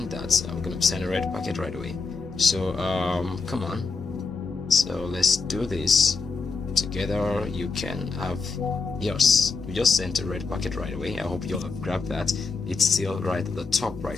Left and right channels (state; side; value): quieter; right; 4.6 dB